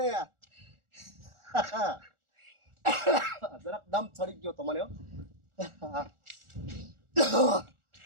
જરાક દમ ચડી ગયો તમને.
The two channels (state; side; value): late; left; 1.4 ms